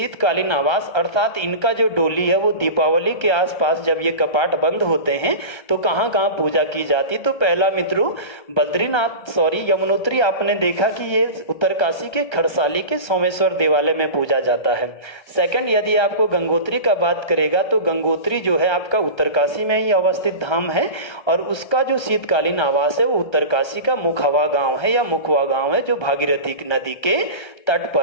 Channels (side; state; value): right; late; 1.3 ms